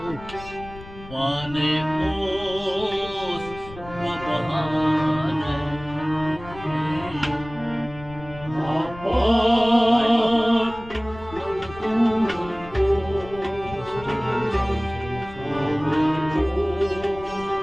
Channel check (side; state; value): left; noise; rumble, 16 dB below the sound